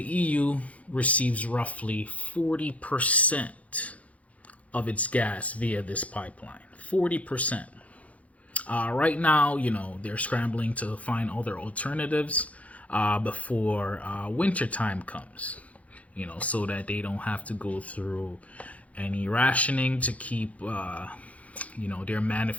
EU receives roughly 40% of its gas via this pipeline. 40%. Right now, they're scrambling to find other alternatives before winter time comes, so that they don't have to go through any rationing to keep, their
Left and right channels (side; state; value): right; late; 0.067 ms